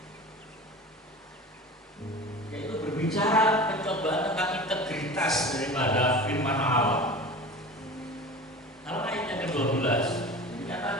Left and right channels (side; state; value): both; normal; correlation 0.35